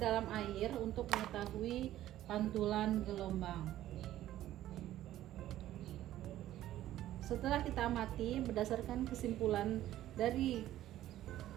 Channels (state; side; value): quieter; left; 13.5 dB